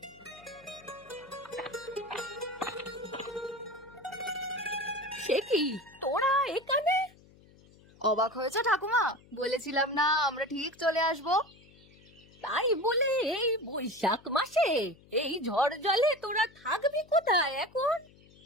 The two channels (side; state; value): left; noise; hum, 26 dB below the sound